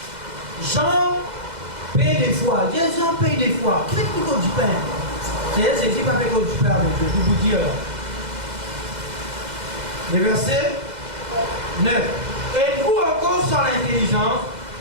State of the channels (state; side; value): late; left; 2.0 ms